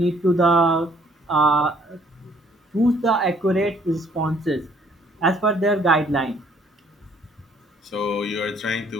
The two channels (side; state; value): both; normal; correlation 0.62